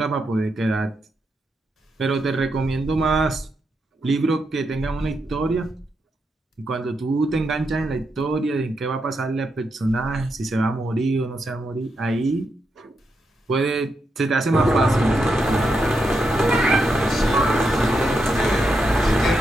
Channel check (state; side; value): normal; both; correlation 0.83